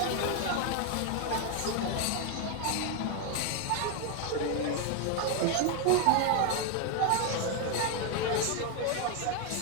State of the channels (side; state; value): both; different; correlation 0.01